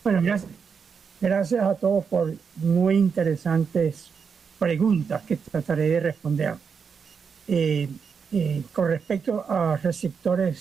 Bueno, gracias a todos por muy interesantes preguntas que trataré de responder. Con respecto a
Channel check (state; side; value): quieter; left; 6.1 dB